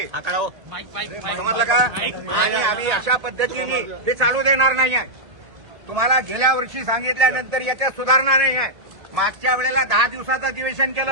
समजलं का? आणि आम्ही अशा पद्धतीने ते चालू देणार नाही आहे. तुम्हाला गेल्या वर्षी सांगितल्यानंतर याच्यात सुधारणा नाही आहे. मागच्या वेळेला 10 दिवसाचं अधिवेशन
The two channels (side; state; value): left; late; 1.7 ms